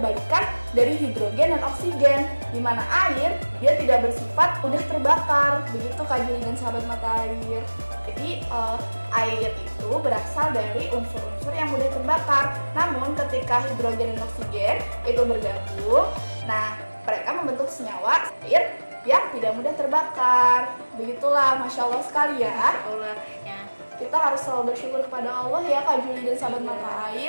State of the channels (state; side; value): inverted; both; correlation -1.00